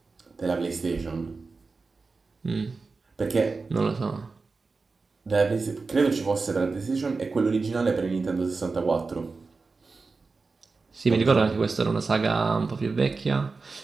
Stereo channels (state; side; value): quieter; left; 4.2 dB